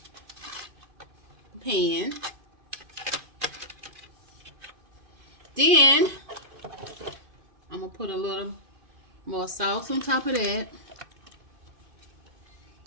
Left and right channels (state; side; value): late; left; 2.5 ms